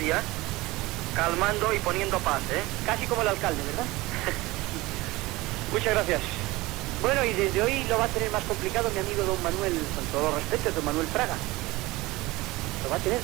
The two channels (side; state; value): left; quieter; 20.4 dB